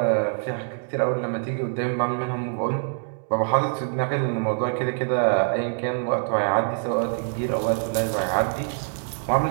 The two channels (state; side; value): silent; left; digital silence